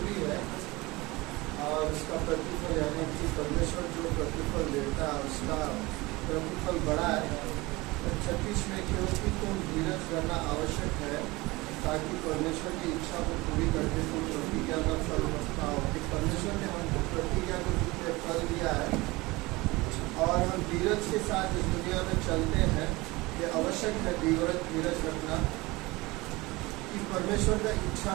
है, और उसका प्रतिफल यानी कि परमेश्वर जो प्रतिफल देता है उसका प्रतिफल बड़ा है। 36 में क्योंकि तुम धीरज करना आवश्यक है, ताकि परमेश्वर की इच्छा को पूरी करके तुम प्रतिज्ञा का फल पाओ। कि परमेश्वर ने हमको प्रतिज्ञा को फल दिया है, और हम धीरज के साथ इस दुनिया में चलते हैं। ये आवश्यक है धीरज रखना, कि परमेश्वर का इच्छा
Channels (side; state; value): left; quieter; 22.2 dB